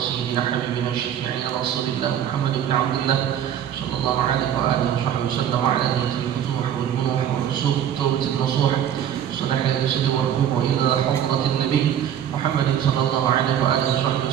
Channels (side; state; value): left; quieter; 9.8 dB